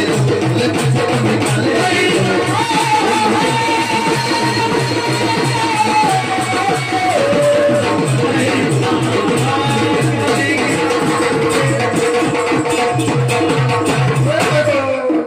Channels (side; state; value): both; identical; correlation 1.00